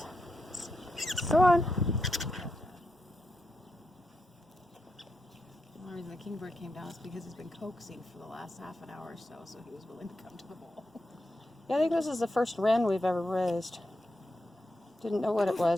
Go on. The only reason the kingbird came down is because he's been coaxing for the last half an hour or so, so he was willing to come to the bowl. Yeah, I think this is the first wren we've ever raised. Didn't know what it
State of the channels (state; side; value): normal; both; correlation 0.86